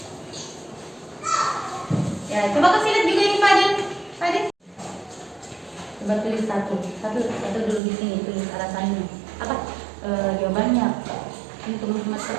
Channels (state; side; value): drops out; left; at 7.8 s